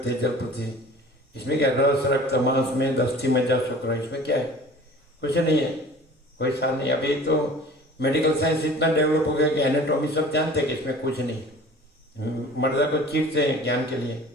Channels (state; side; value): normal; both; correlation 0.44